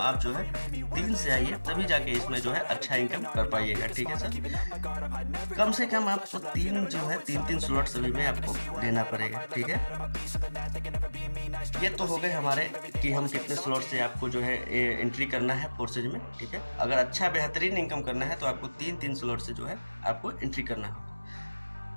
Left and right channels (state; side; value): inverted; both; correlation -1.00